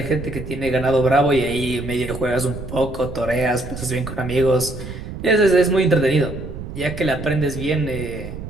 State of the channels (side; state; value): right; noise; rumble, 10 dB below the sound